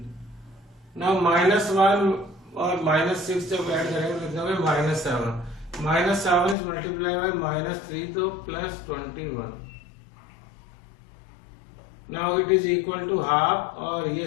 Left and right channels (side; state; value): right; drops out; at 6.6 s